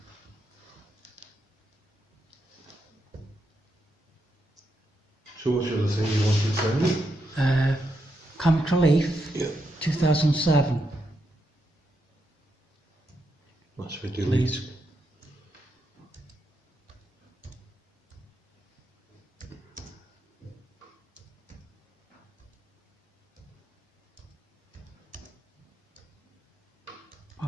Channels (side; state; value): both; normal; correlation 0.82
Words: So what's the other thing you wanted to send? Comic Relief, Yeah. 2007. That's for delete. Please.